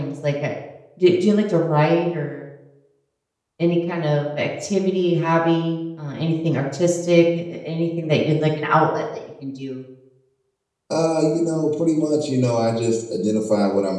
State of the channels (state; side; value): identical; both; correlation 1.00